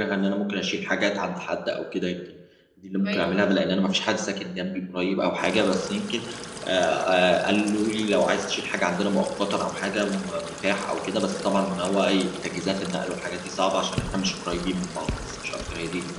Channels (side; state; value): both; identical; correlation 1.00